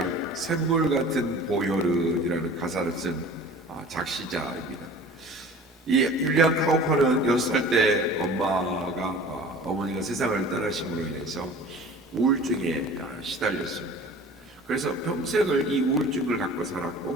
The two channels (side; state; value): both; normal; correlation 0.43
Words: 샘물 같은 보혈은이라는 가사를 쓴 작시자입니다. 이 윌리엄 카우퍼는 6살 때 어머니가 세상을 떠나심으로 인해서 우울증에 시달렸습니다. 그래서 평생을 이 우울증을 갖고